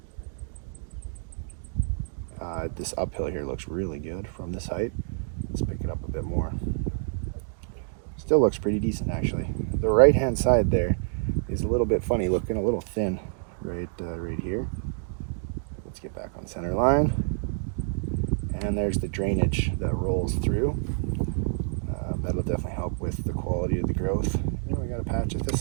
This uphill here looks really good from this height. Let's pick it up a bit more. Still looks pretty decent actually. The right hand side there is a little bit funny looking, a little thin right here. Let's get back on center line. And there's the drainage that rolls through. That'll definitely help with the quality of the growth. And we got a patch of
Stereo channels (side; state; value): left; silent; digital silence